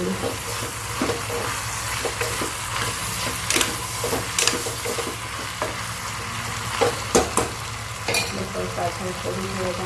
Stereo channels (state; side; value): identical; both; correlation 1.00